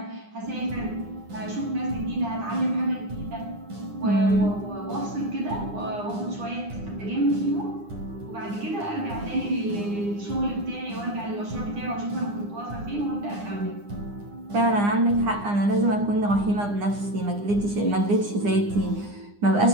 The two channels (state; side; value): late; left; 9.8 ms